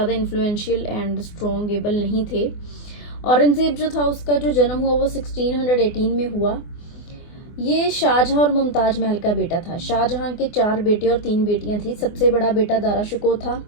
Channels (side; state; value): right; late; 24 ms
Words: इन्फ्लुएंशियल एंड स्ट्रॉन्ग एबल नहीं थे। औरंगजेब जो था उसका जो जन्म हुआ वो 1618 में हुआ। ये शाहजहां और मुमताज महल का बेटा था। शाहजहां के 4 बेटे और 3 बेटियां थी। सबसे बड़ा बेटा दारा शिकोह था